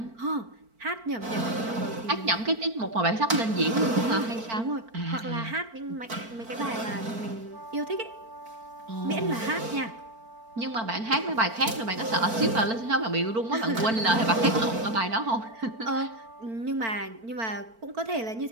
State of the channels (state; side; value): late; left; 4.4 ms